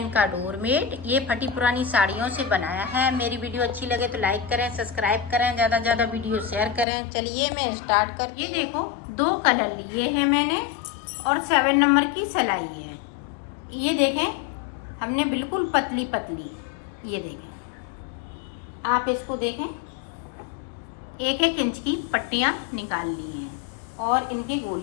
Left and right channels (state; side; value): drops out; right; at 6.9 s